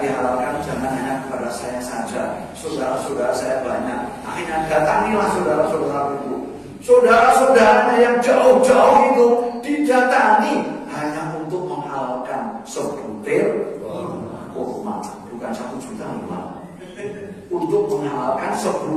dihalalkan, jangan hanya kepada saya saja. Saudara-saudara saya banyak. Akhirnya datangilah saudara-saudara itu. Saudara-saudaranya yang jauh-jauh itu didatangi hanya untuk menghalalkan sebutir kurma, bukan 1 juta kurma. Untuk menghalalkan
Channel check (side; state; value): both; identical; correlation 1.00